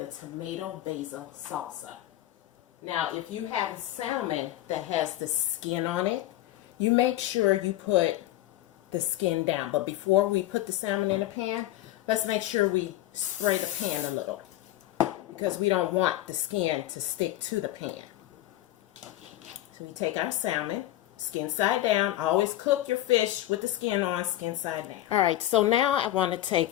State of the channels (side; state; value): right; quieter; 14.6 dB